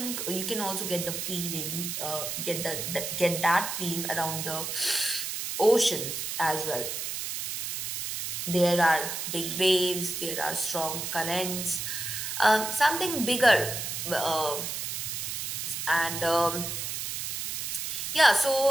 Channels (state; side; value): noise; right; hiss, 4 dB below the sound